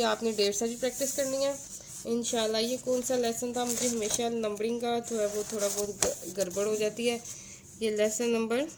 आपने 1.5 भी प्रैक्टिस करनी है इंशाल्लाह। ये कौन सा लेसन था, मुझे हमेशा नंबरिंग का जो है वो थोड़ा बहुत गड़बड़ हो जाती है। ये लेसन नंबर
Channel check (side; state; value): both; identical; correlation 1.00